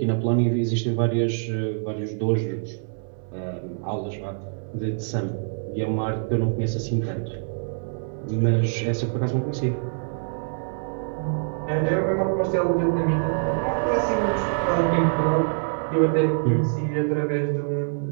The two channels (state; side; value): silent; left; digital silence